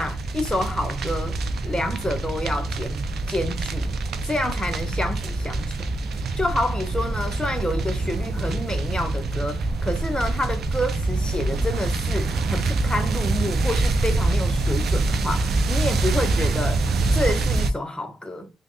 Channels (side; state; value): both; normal; correlation 0.85